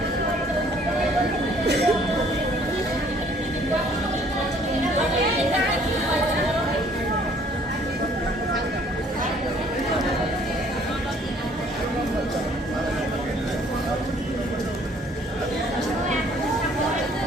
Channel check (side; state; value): both; normal; correlation 0.59